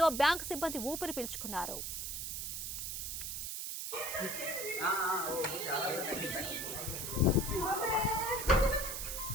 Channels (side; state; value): right; noise; hiss, 4 dB below the sound